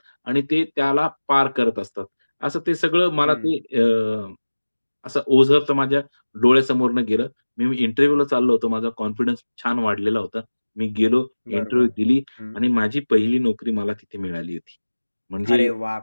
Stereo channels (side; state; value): both; inverted; correlation -1.00